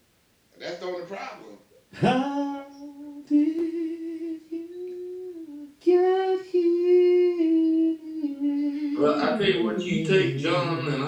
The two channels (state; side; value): identical; both; correlation 1.00